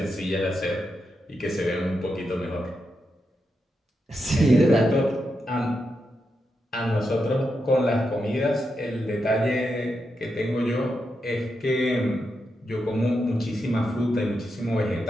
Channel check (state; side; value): normal; both; correlation 0.85